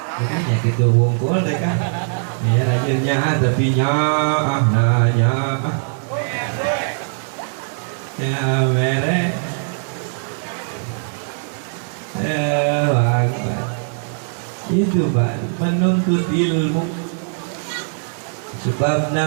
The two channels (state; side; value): silent; left; digital silence